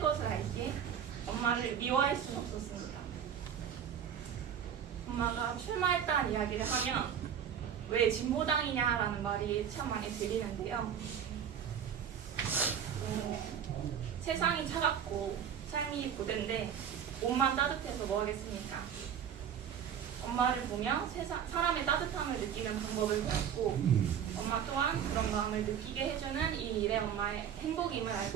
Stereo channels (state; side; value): quieter; left; 8.5 dB